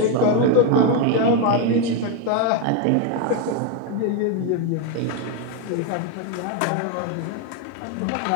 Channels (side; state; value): both; different; correlation 0.01